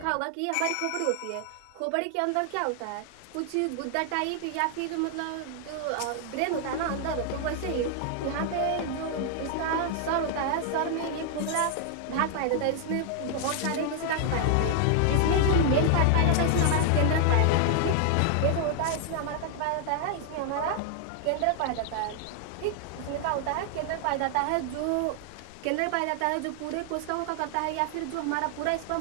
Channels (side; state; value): both; different; correlation 0.00